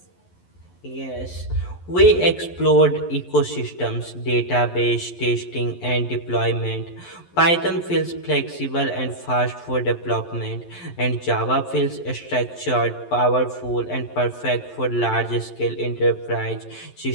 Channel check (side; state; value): right; late; 11 ms